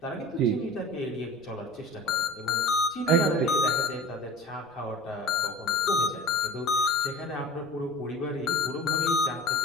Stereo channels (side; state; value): right; noise; rumble, 29 dB below the sound